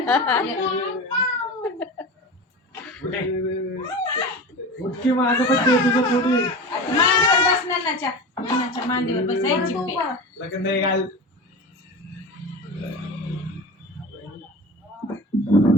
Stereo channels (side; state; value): both; normal; correlation 0.30